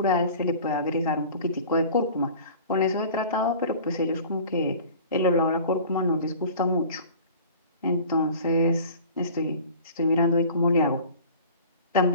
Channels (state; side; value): inverted; both; correlation -0.43